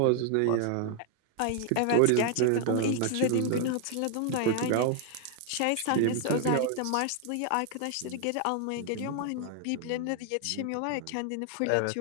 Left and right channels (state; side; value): different; both; correlation 0.00